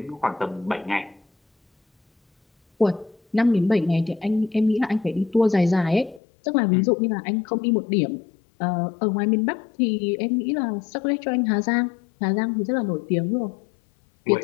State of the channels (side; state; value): right; drops out; at 6.2 s